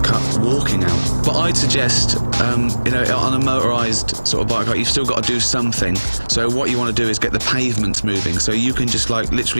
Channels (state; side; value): inverted; both; correlation -1.00